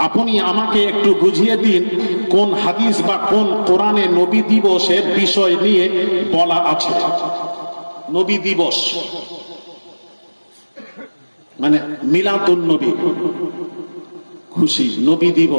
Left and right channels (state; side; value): inverted; both; correlation -1.00